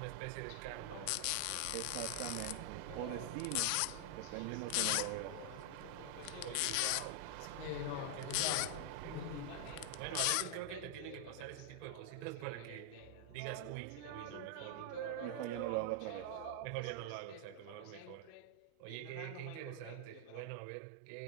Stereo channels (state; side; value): different; both; correlation -0.01